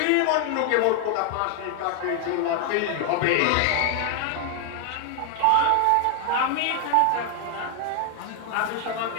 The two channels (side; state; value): both; different; correlation 0.00